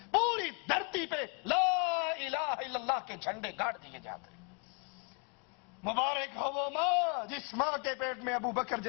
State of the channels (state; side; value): quieter; right; 36.6 dB